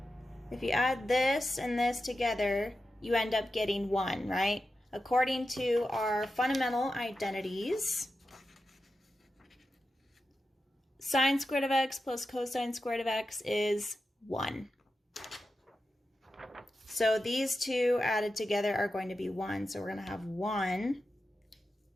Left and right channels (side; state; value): both; normal; correlation 0.91